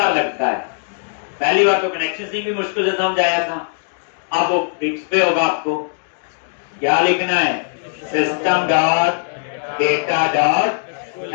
लगता है, पहली बार तो कनेक्शन से भी मुश्किल से समझ आया था, अब वो फिक्स पे होगा, आपको क्या लिखना है, system dot data dot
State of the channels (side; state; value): right; silent; digital silence